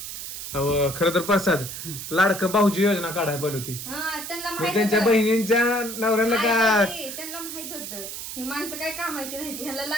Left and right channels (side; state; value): right; noise; hiss, 8 dB below the sound